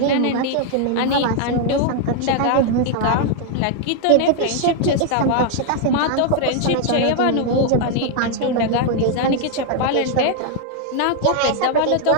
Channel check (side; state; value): both; different; correlation 0.00